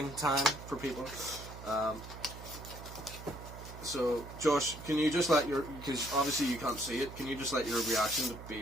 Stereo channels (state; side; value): noise; right; hum, 13 dB below the sound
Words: time for people. So, Josh, can you just let because obviously you can't see it, can you just let your reaction to be